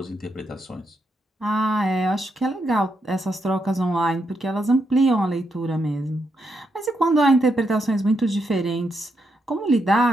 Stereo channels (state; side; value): normal; both; correlation 0.81